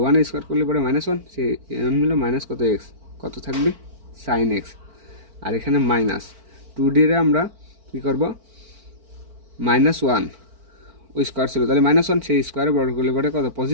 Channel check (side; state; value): left; late; 4.4 ms